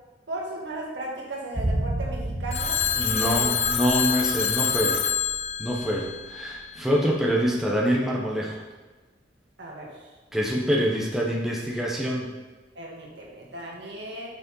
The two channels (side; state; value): both; normal; correlation 0.49